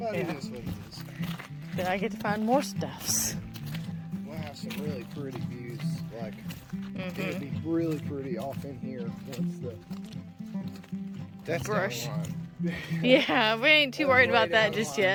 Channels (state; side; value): identical; both; correlation 1.00